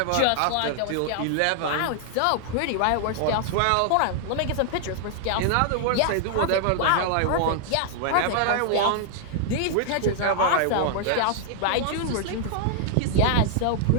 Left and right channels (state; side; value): different; both; correlation -0.01